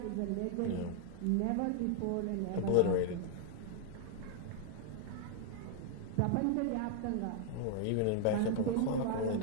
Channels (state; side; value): different; both; correlation 0.00